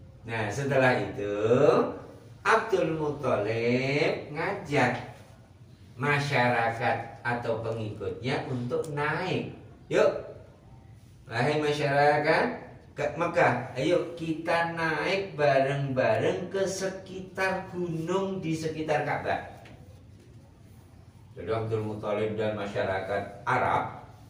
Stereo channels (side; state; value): both; identical; correlation 1.00